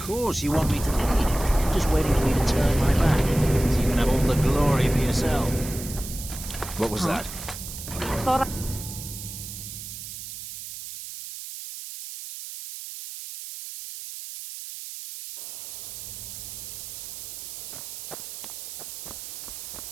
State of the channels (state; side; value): noise; right; hiss, 10 dB below the sound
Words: course you want me to lead. Just waiting for you to turn my back, so you can have all the glory for yourself. What was that? Thought I...